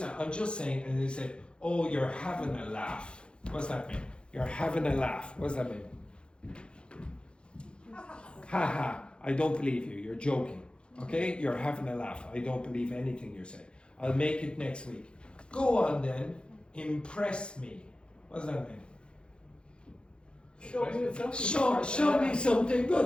I'm just saying, and they say, oh, you're having a laugh. What does that mean? You're having a laugh. What does that mean? Ha ha, I don't believe you. You're joking. Okay? You're having a laugh. I don't believe anything you say. I'll make it next week. Go on then. Impress me. What does that mean? Show me something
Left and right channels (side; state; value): right; late; 0.054 ms